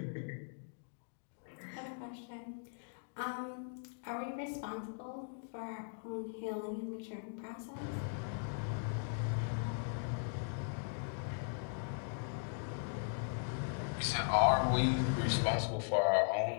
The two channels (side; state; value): right; silent; digital silence